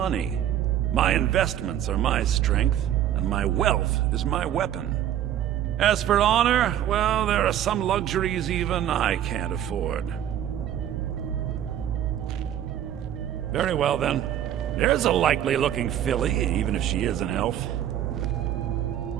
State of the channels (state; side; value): quieter; left; 10.9 dB